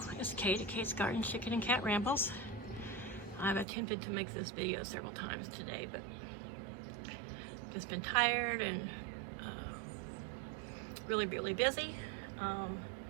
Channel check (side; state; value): left; drops out; at 3.7 s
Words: it's Kate at Kate's Garden Chicken and Cat Rambles. I've attempted to make this video several times today, but just been tired and really busy.